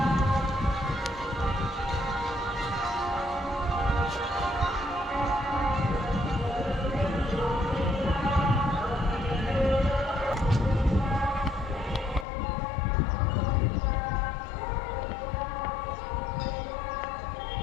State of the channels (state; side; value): drops out; right; at 12.2 s